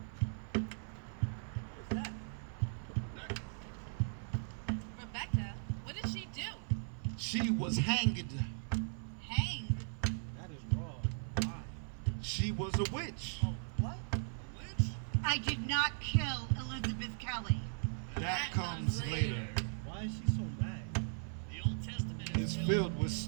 What's that? Rebecca? What did she do? She was hanged. Hanged? That is wrong. Why? She was a witch. Oh, what? A witch? I did not kill Elizabeth Kelly. That comes later. Why is she so mad? The Old Testament It's filled with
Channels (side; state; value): left; silent; 52 dB below the other